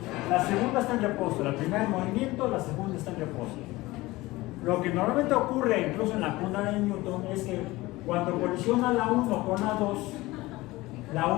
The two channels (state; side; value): quieter; right; 19.7 dB